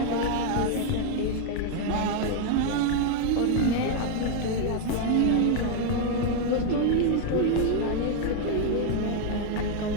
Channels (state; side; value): different; both; correlation 0.00